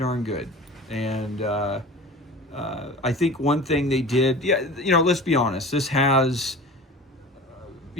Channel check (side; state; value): both; normal; correlation 0.37